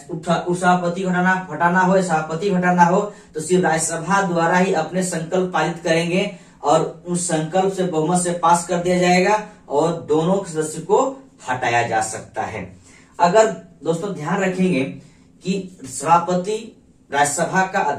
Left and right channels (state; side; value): identical; both; correlation 1.00